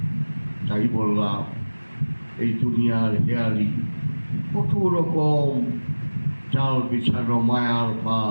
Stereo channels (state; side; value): inverted; both; correlation -1.00